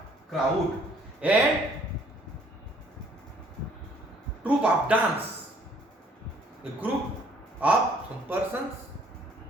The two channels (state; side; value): normal; both; correlation 0.60